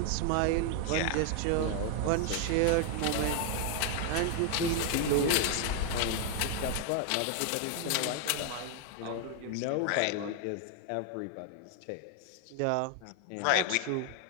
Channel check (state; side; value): different; both; correlation 0.00